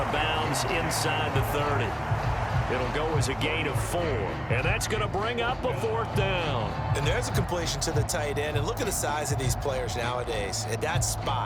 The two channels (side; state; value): both; identical; correlation 1.00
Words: of bounds inside the 30. It'll go as a gain of 4. And that's going to bring up a 4th down. And there's a completion to the tight end. And look at the size of these players nowadays. At that